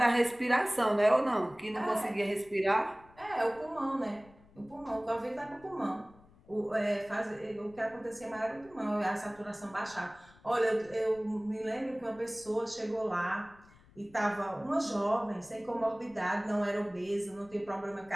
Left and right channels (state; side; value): noise; left; rumble, 26 dB below the sound